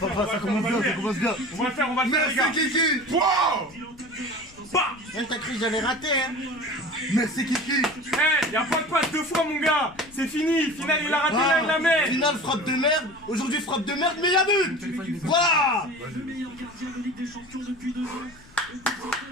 ça commence bien, ça commence bien! On va le faire, les gars! Merci, Kiki! Wow! T'as cru que j'allais rater, hein? Merci Kiki. Eh, y'a pas de passe deux fois, mon gars. C'est fini. Final, il a raté la mer. Finale frappe de merde. Aujourd'hui frappe de merde, mais y'a but. Voilà. Le meilleur gardien de Ligue des Champions depuis 2 ans. Et pour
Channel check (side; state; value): left; noise; rumble, 24 dB below the sound